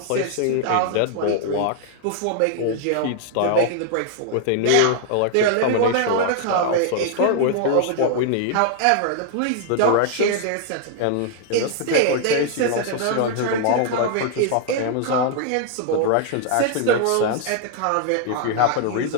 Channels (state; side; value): different; both; correlation 0.00